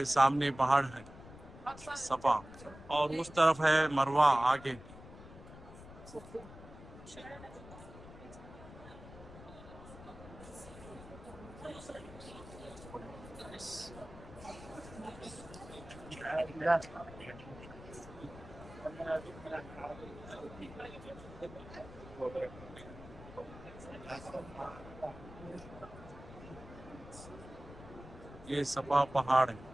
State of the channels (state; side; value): noise; left; rumble, 16 dB below the sound